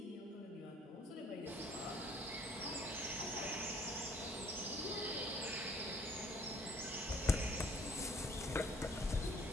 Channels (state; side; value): normal; both; correlation 0.58